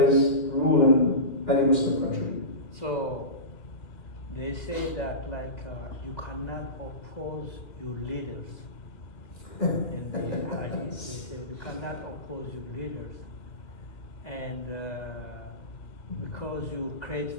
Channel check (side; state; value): right; late; 2.3 ms